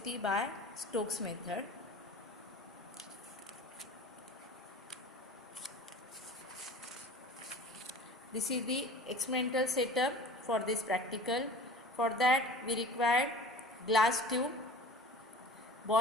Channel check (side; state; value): both; normal; correlation 0.40